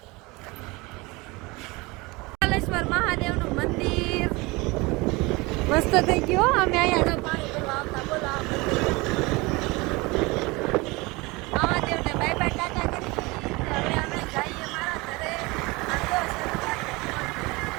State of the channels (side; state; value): left; quieter; 24.2 dB